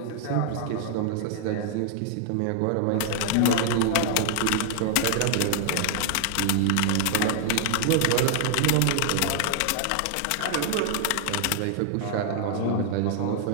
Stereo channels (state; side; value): different; both; correlation 0.00